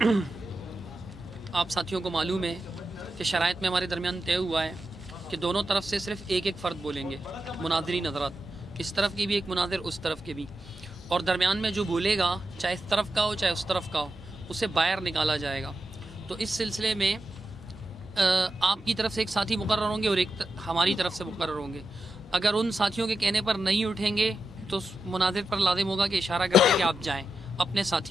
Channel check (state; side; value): normal; both; correlation 0.89